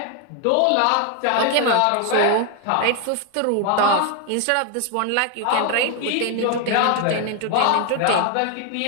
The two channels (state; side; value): different; both; correlation 0.01